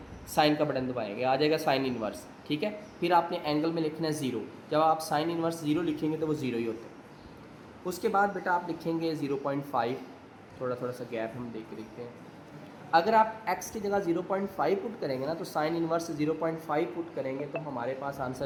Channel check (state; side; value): identical; both; correlation 1.00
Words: साइन का बटन दबाएंगे, आ जाएगा साइन इनवर्स, ठीक है। फिर आपने एंगल में लिखना है 0, जब आप साइन इनवर्स 0 लिखेंगे तो वो 0 ही होता है। उसके बाद बेटा आप लिखेंगे 0.5, थोड़ा थोड़ा सा गैप हम देख के देखते हैं। अगर आप x की जगह 0.5 पुट करेंगे ना, तो साइन इनवर्स 0.5 पुट करेंगे तो हमारे पास